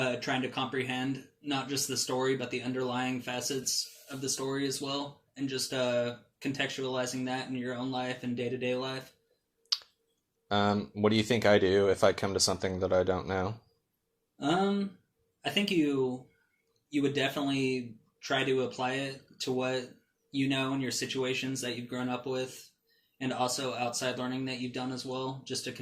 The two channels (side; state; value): both; identical; correlation 1.00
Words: trying to comprehend not just the story, but the underlying facets of the story as well, and just contextualizing that in your own life and day-to-day life. What do you think I do if I come to something that I don't know? I think you would definitely try to apply it to what you know in your situations that you've grown up with, and also outside learning that you've done as well, just to